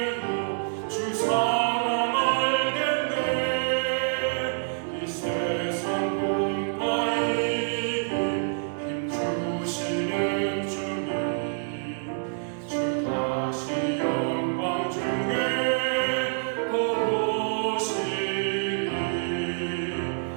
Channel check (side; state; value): left; silent; digital silence